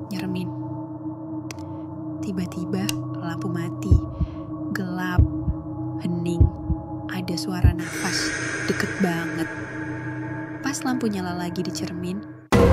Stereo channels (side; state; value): both; identical; correlation 1.00